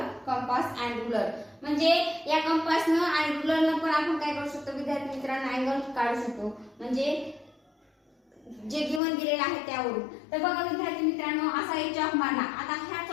compass and ruler. म्हणजे या कंपासनं आणि रुलरनं पण आपण काय करू शकतो विद्यार्थी मित्रांनो, अँगल काढू शकतो, म्हणजे जे गिवन दिलेलं आहे त्यावरून. तर बघा विद्यार्थी मित्रांनो, असा एक चॉक मारला. आता ह्या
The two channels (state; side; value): drops out; right; at 9.0 s